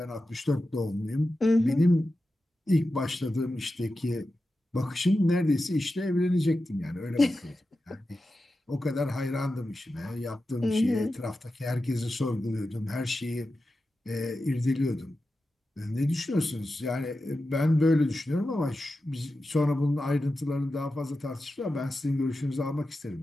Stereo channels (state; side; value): normal; both; correlation 0.92